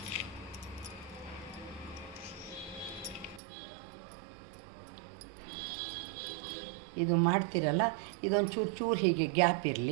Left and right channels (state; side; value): drops out; left; at 3.4 s